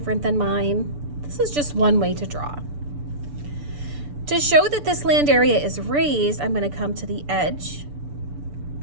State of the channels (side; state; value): left; late; 6.9 ms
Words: than mine. This is just one way to draw. To show that this land area is raised, I'm going to come to the edge